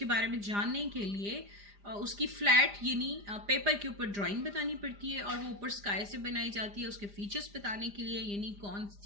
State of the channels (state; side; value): late; left; 5.0 ms